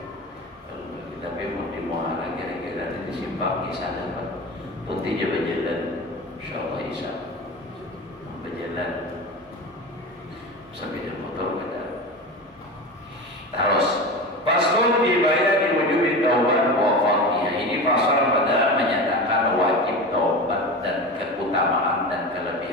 Tapi mau di muara kira-kira di simpang isya dapat putihnya berjalan, insyaallah isya berjalan sampai di motor ada. Terus pasal dibayar di wujud taubat wa fadhiyah. Ini pasal pada menyatakan wajib taubat dan keutamaan dan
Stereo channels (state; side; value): normal; both; correlation 0.28